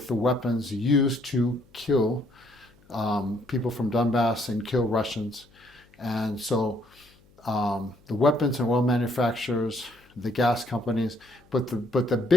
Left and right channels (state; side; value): noise; left; hum, 30 dB below the sound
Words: the weapons used to kill people from Donbass and kill Russians. And so the weapons and oil manufacturers, the gas companies, but the